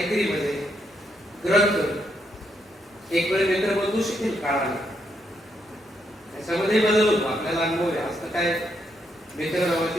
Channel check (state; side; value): normal; both; correlation 0.77